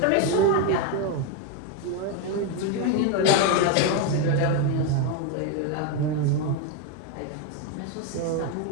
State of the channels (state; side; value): different; both; correlation 0.02